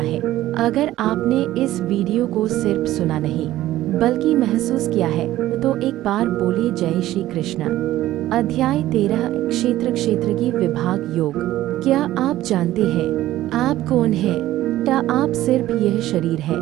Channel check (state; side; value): quieter; left; 14.8 dB